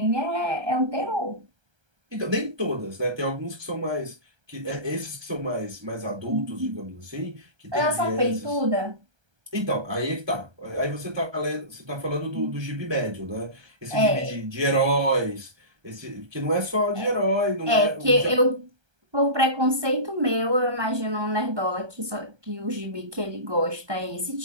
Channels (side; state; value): left; late; 1.3 ms